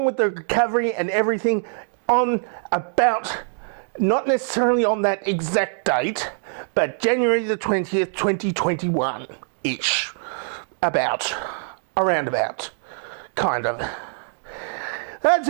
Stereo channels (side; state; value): left; silent; digital silence